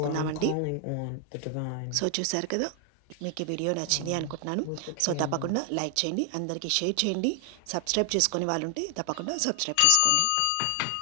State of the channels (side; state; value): both; different; correlation 0.00